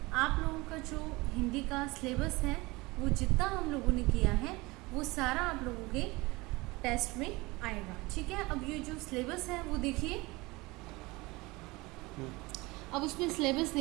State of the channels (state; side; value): quieter; left; 22.8 dB